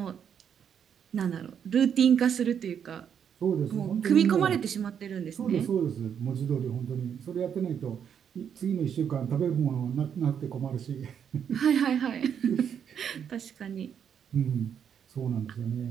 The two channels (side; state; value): left; quieter; 8.1 dB